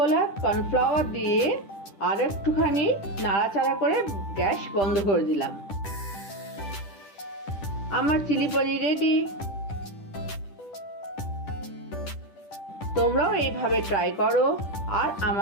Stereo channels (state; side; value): late; right; 10 ms